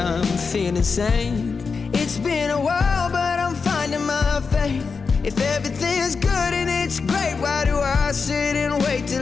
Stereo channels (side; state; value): right; quieter; 5.0 dB